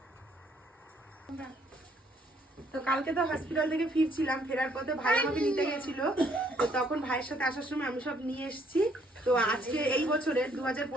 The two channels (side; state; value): both; normal; correlation 0.66